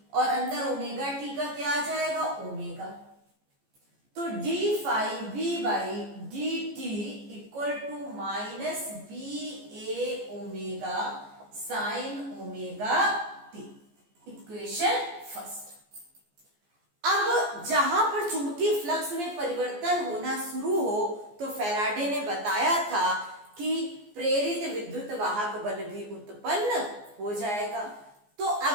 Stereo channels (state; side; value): late; left; 14 ms